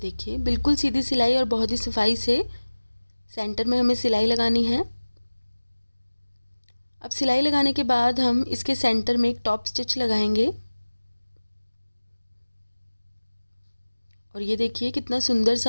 बिल्कुल सीधी सिलाई और बहुत ही सफाई से सेंटर में हमें सिलाई लगानी है। अब सिलाई लगाने के बाद हम इसके सेंटर में एक टॉप स्टिच लगाएंगे और ये देखिए कितना सुंदर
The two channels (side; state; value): both; inverted; correlation -1.00